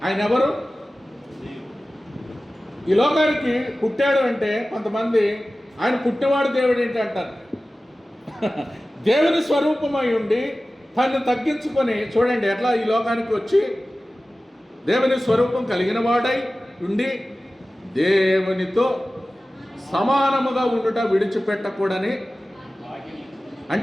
ఆయన ఎవరు? ఈ లోకానికి పుట్టాడు అంటే కొంతమంది ఆయన పుట్టినవాడు దేవుడు ఏంటి అంటారు. దేవుని స్వరూపమై ఉండి తను తగ్గించుకొని, చూడండి ఎట్లా ఈ లోకానికి వచ్చి దేవుని స్వరూపం కలిగిన వాడై ఉండి దేవునితో సమానముగా ఉండుట విడిచిపెట్టకూడని.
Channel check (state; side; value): normal; both; correlation 0.96